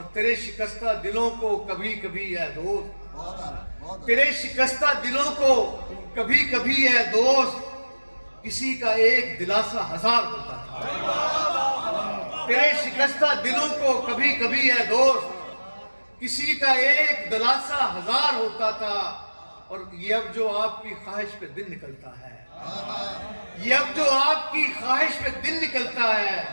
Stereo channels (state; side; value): inverted; both; correlation -1.00